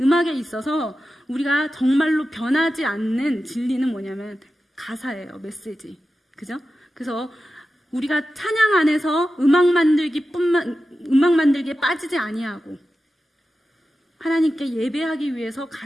있어서 우리가 정말로 변하지 않는 진리는 뭐냐면 가사예요. 메시지. 그죠? 그래서 우리가 찬양 안에서 음악 만들기에 빠지지 아니하고, 하나님께 예배하기 위해서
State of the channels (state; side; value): normal; both; correlation 0.93